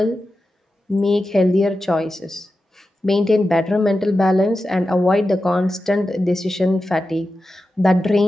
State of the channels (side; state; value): both; normal; correlation 0.92